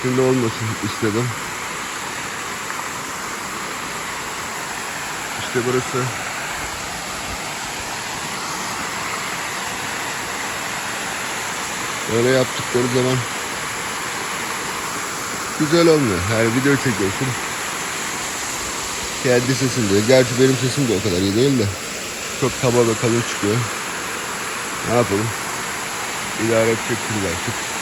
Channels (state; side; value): identical; both; correlation 1.00